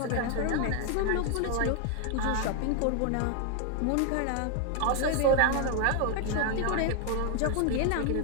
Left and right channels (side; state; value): both; different; correlation 0.00